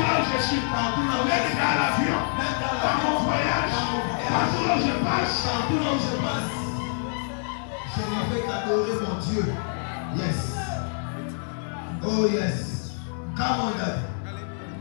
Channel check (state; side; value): silent; right; digital silence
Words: là où je suis, même dans l'avion, dans mon voyage, partout là où je passe. Je me fais adorer mon Dieu. Yes. Oh yes. Come on, Daddy.